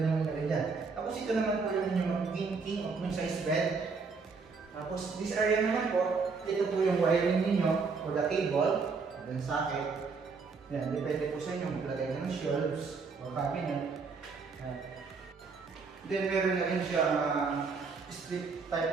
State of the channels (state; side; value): quieter; left; 4.8 dB